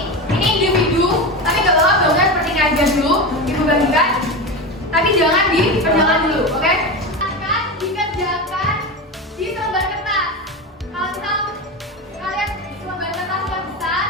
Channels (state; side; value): normal; both; correlation 0.21